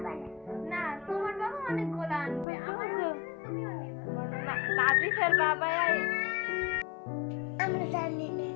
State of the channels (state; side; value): drops out; right; at 2.5 s